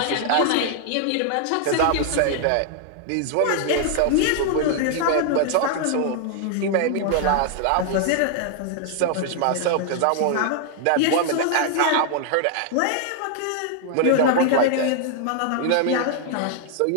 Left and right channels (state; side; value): different; both; correlation 0.00